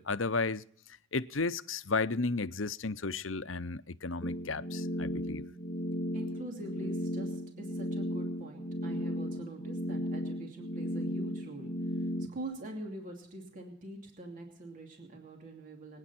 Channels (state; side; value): normal; both; correlation 0.37